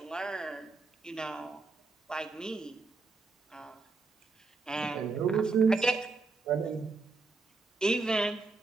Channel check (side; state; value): left; quieter; 4.0 dB